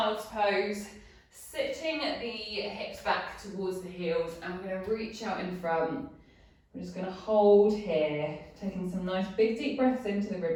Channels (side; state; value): both; identical; correlation 1.00